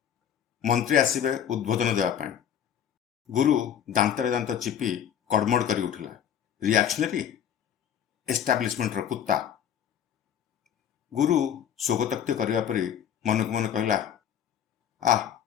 ମନ୍ତ୍ରୀ ଆସିବେ ଉଦ୍ବୋଧନ ଦେବା ପାଇଁ। ଗୁରୁ ଦାନ୍ତରେ ଦାନ୍ତ ଚିପି କଡ଼ମଡ଼ କରି ଉଠିଲା। ରିଆକ୍ସନରୀ ଏଷ୍ଟାବ୍ଲିଶମେଣ୍ଟର କୁତ୍ତା। ଗୁରୁ ସ୍ୱଗତୋକ୍ତି କରିବା ପରି ମନକୁ ମନ କହିଲା,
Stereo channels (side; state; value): right; quieter; 9.2 dB